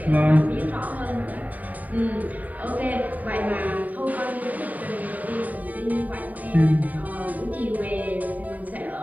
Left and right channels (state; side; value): late; left; 0.075 ms